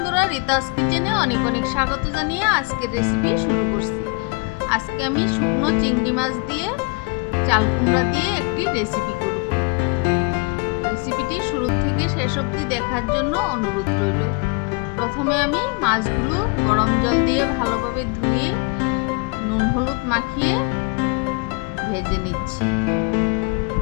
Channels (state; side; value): quieter; right; 30.0 dB